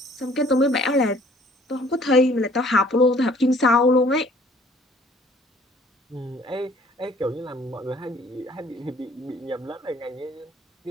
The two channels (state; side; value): normal; both; correlation 0.57